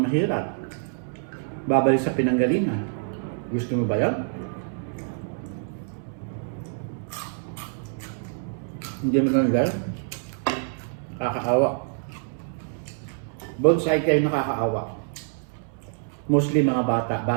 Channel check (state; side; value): silent; left; 61 dB below the other